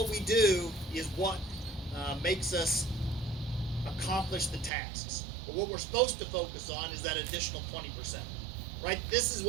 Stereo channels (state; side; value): drops out; left; at 4.7 s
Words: we do is what makes us accomplish the tasks. But what we're supposed to focus on is that additional 20%, right? This is